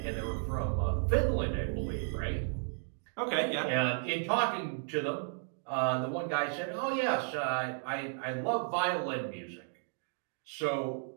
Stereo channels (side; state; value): left; silent; 55 dB below the other